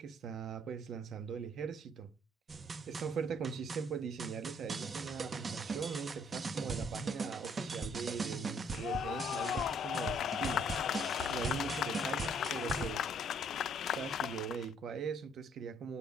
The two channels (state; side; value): normal; both; correlation 0.64